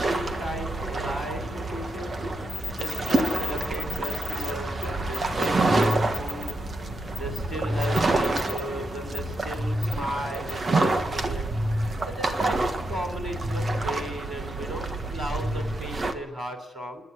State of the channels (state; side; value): normal; both; correlation 0.84